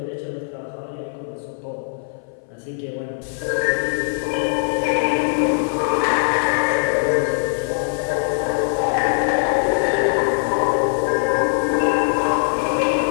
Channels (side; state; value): right; silent; 58 dB below the other